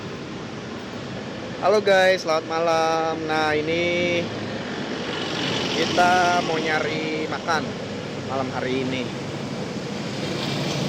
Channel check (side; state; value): both; identical; correlation 1.00